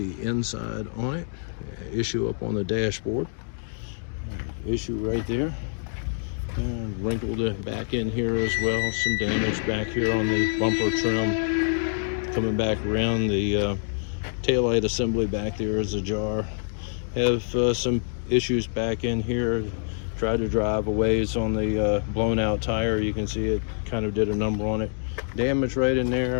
inside on it. Issue up on the dashboard. Issue right there. And wrinkled back in here as well. Some damage back here on the bumper trim. Coming back around, the taillight assembly back there is ajar. Have some issues back in here. Tried to drive a ways on the blown out tire. You can see it kind of did a number on it. Damage right in there,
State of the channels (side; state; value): right; silent; digital silence